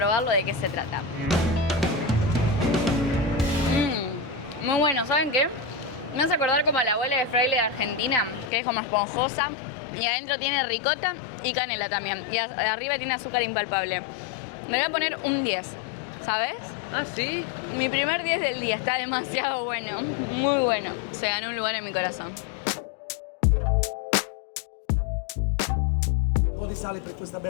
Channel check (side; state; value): right; drops out; at 8.5 s